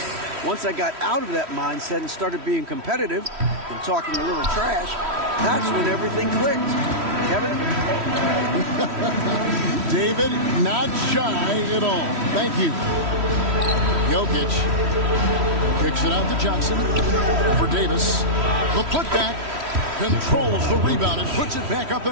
Once I got out of that mindset and started being competitive and talking a little trash, that's when everything clicked. Kevin? David, not shy at all. Thank you. Jokic kicks it out to Johnson for Davis. The putback, controls the rebound and puts it back up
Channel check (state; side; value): late; left; 3.1 ms